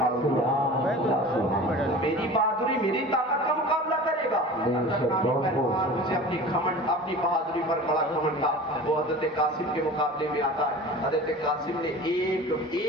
دیا۔ میری بہادری، میری طاقت کا مقابلہ کرے گا؟ ارزق نامی تلوار مجھے اپنی گھمنڈ، اپنی بہادری پر بڑا گھمنڈ تھا، وہ حضرت قاسم کے مقابلے میں آتا ہے۔ حضرت قاسم نے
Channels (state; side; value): normal; both; correlation 0.38